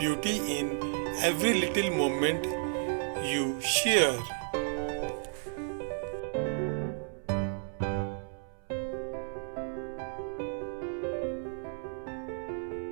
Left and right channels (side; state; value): left; silent; 56 dB below the other